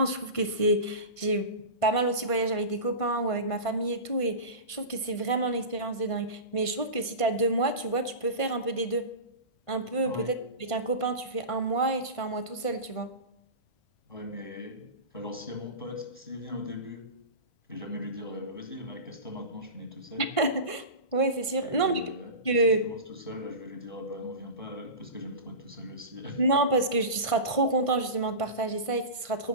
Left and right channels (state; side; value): late; right; 1.5 ms